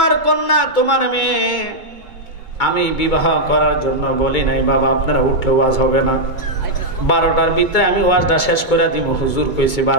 কন্যা, তোমার মেয়ে আমি বিবাহ করার জন্য বলি নাই বাবা, আপনারা উঠলে ওয়াজ হবে না। 12টার ভিতরে আমি ওয়াজটা শেষ করে দিব। হুজুর কইছে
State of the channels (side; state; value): right; late; 2.2 ms